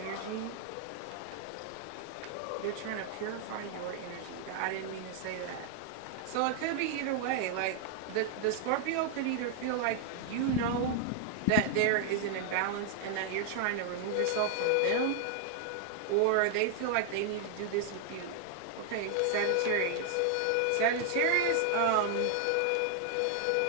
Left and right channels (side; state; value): both; different; correlation 0.00